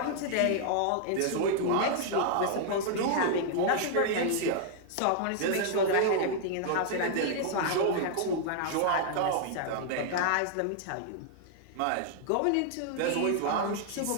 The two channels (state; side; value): different; both; correlation -0.01